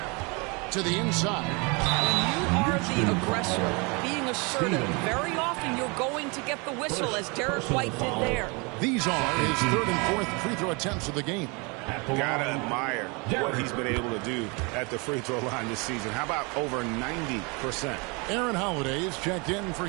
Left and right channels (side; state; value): left; quieter; 29.9 dB